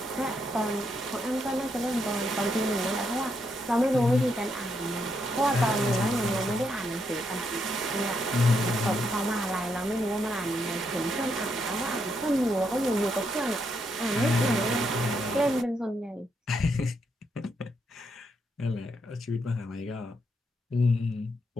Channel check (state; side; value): normal; both; correlation 0.78